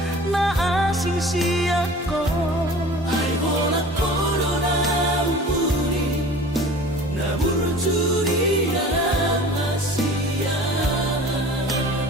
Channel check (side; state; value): both; normal; correlation 0.42